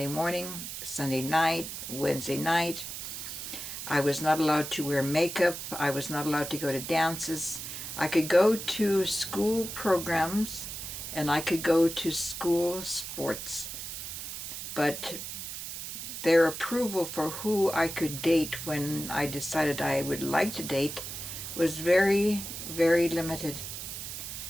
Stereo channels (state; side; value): noise; right; hiss, 7 dB below the sound